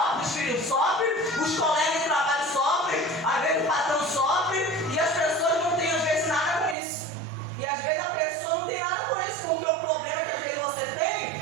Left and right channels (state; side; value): drops out; left; at 6.8 s